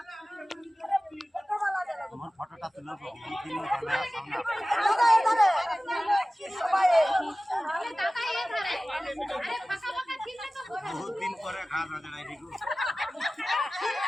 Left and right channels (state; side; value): normal; both; correlation 0.97